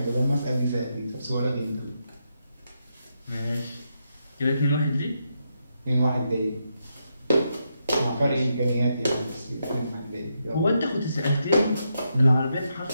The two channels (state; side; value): inverted; both; correlation -0.82